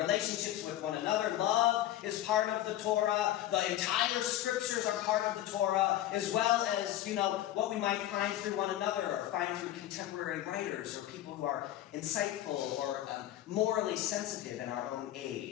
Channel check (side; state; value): right; quieter; 13.4 dB